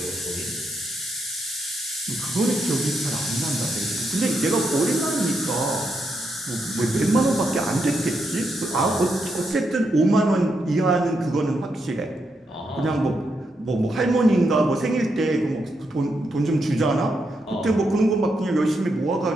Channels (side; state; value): both; normal; correlation 0.81